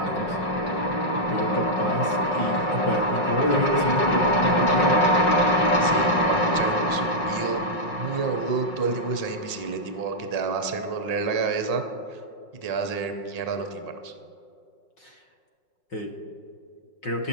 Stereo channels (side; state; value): right; late; 5.5 ms